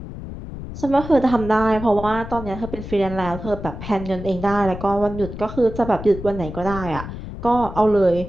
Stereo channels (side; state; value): left; noise; rumble, 10 dB below the sound